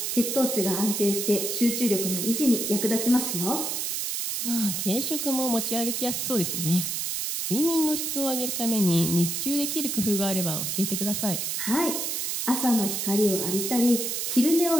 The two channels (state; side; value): noise; right; hiss, 1 dB below the sound